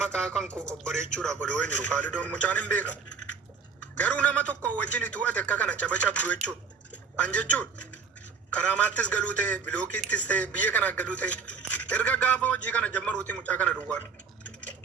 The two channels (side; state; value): left; quieter; 5.7 dB